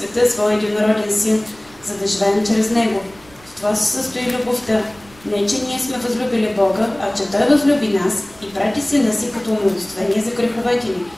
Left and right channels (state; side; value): noise; right; rumble, 26 dB below the sound